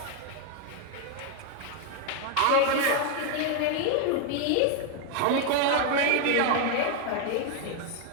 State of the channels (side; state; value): both; different; correlation 0.01